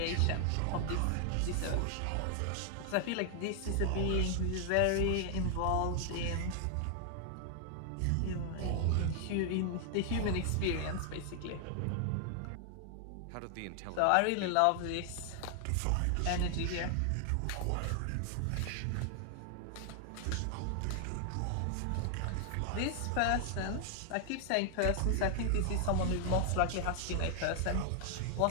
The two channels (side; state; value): both; different; correlation 0.00